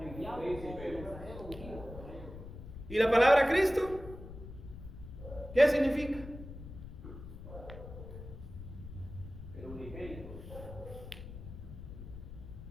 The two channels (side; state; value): left; noise; rumble, 12 dB below the sound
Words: ¿Y la palabra Cristo? ¿Qué significa? El unigénito.